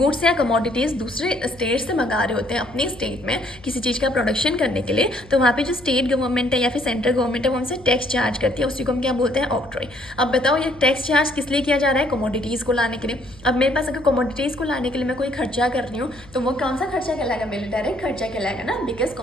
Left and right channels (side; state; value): left; noise; hum, 22 dB below the sound